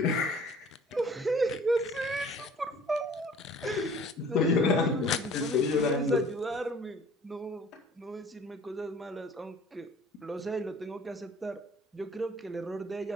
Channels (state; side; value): normal; both; correlation 0.50